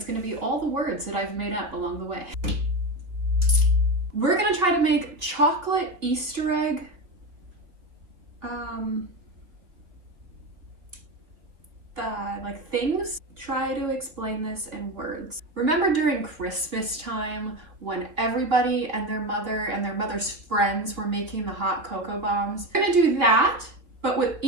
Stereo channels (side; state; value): left; late; 3.1 ms